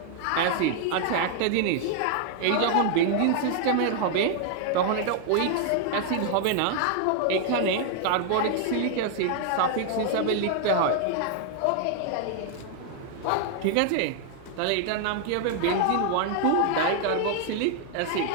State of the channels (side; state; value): both; different; correlation 0.00